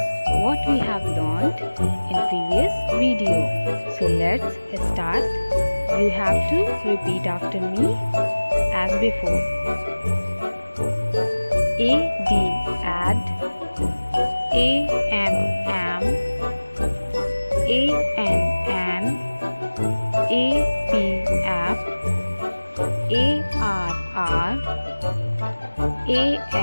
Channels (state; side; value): inverted; both; correlation -1.00